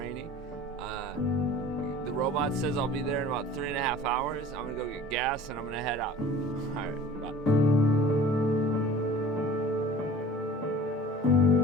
The robot says I'll be there in about 3.5 hours. I'm gonna go get gas and I'm gonna head out. All right, bye.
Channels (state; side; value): normal; both; correlation 0.44